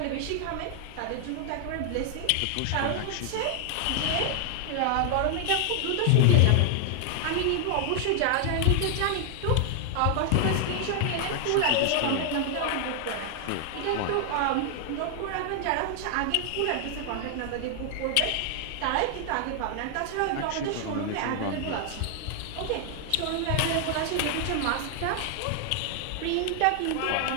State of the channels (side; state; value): both; different; correlation 0.00